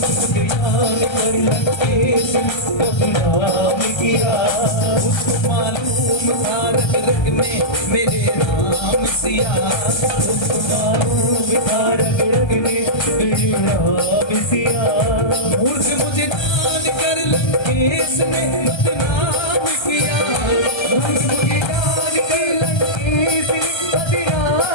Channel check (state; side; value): late; right; 1.3 ms